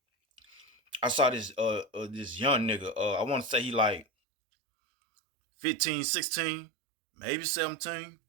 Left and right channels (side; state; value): left; drops out; at 4.0 s